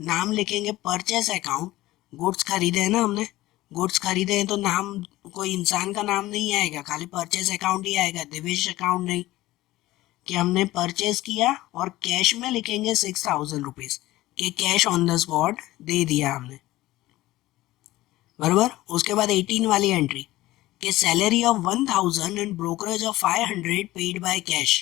नाम लिखेंगे परचेस अकाउंट। गुड्स खरीदे हैं ना हमने, गुड्स खरीदे हैं तो नाम, कोई इंसान का नाम नहीं आएगा, खाली परचेस अकाउंट ही आएगा, दिवेश अकाउंट नहीं। कि हमने परचेस किया और कैश में लिखेंगे 6000 रुपीज कि कैश ऑन द स्पॉट दे दिया हमने। बराबर। उसके बाद 18 वाली एंट्री कि salary of 1000 and brokerage of 500 paid by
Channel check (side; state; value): right; quieter; 17.0 dB